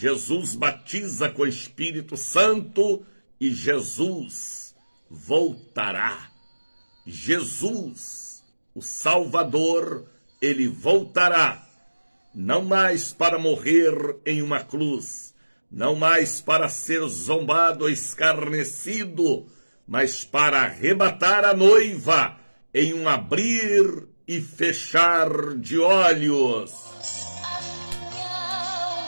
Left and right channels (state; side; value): inverted; both; correlation -1.00